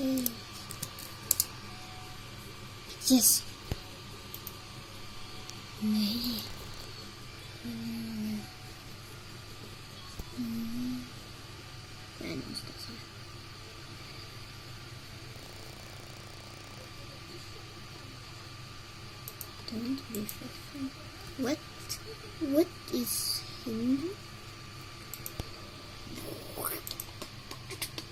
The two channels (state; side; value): identical; both; correlation 1.00